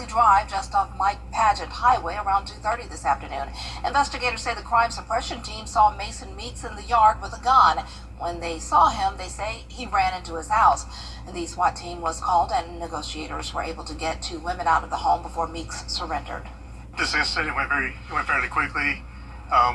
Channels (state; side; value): identical; both; correlation 1.00